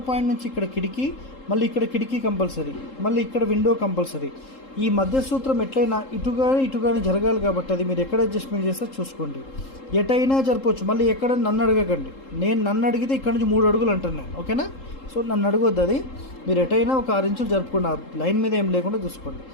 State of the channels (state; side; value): late; right; 3.7 ms